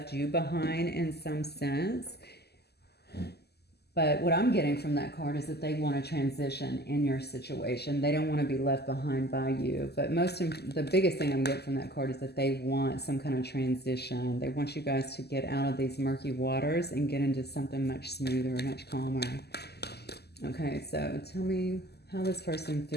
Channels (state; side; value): late; right; 0.47 ms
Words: you behind in some sense. But what I'm getting from that card is that they want to transition in your situation. They don't want to be left behind by you. But the biggest thing I'm getting from that card is that they want some kind of transition. They want you guys to get out of these murky waters and get into something much smoother, much calmer. Okay, so tell me how this person